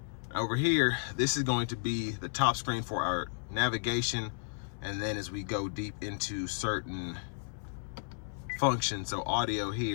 Over here, this is going to be the top screen for our navigation, and then as we go deep into certain functions, so audio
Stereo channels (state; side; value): silent; right; 56 dB below the other